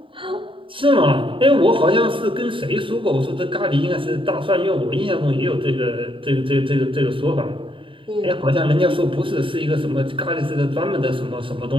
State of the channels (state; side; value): late; left; 0.25 ms